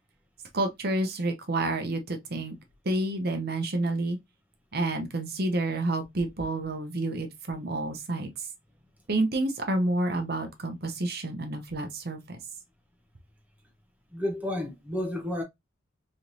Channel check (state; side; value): normal; both; correlation 0.59